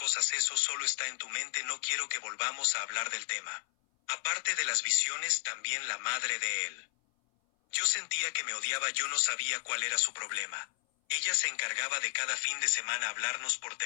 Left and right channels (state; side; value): silent; right; 56 dB below the other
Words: eso solo está en tu mente, no quiero que volvamos a hablar del tema. Aparte de las visiones, también la madre de él. Yo sentía que me odiaba, yo no sabía cuál era su problema. Ella se encargaba de cada fin de semana hablarnos por